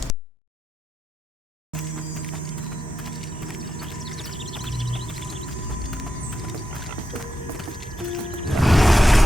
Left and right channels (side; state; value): both; normal; correlation 0.86